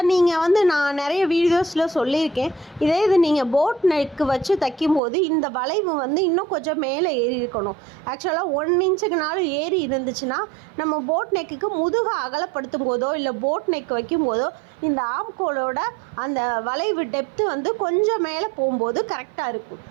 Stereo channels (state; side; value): drops out; left; at 5.0 s